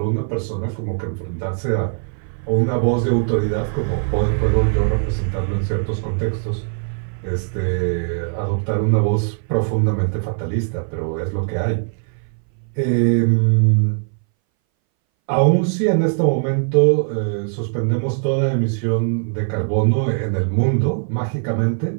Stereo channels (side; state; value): left; silent; 62 dB below the other